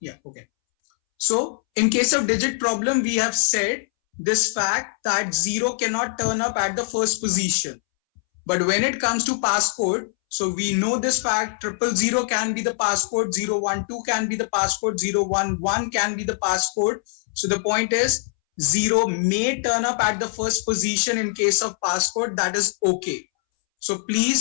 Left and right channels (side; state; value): right; silent; 64 dB below the other